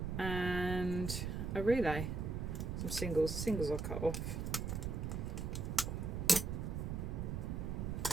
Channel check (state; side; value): noise; right; rumble, 2 dB below the sound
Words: and a relay. Some singles. The singles I'll cut off.